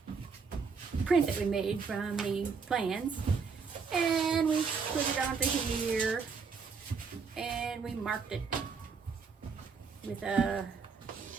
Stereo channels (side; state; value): left; quieter; 5.3 dB